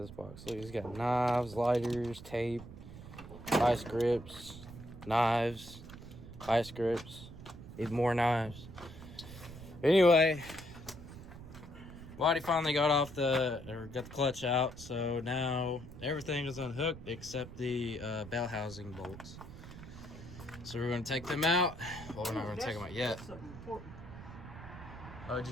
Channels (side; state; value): right; noise; rumble, 14 dB below the sound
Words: box. Look, he's got knives, lighters, tape, vice grips, knives, vice grips, even more knives. Anyway, Waddy finally got the clutch out, so now everything is unhooked except the bell housing bolts. So we're gonna take them out. Well, we're not gonna take them out yet. Oh, did you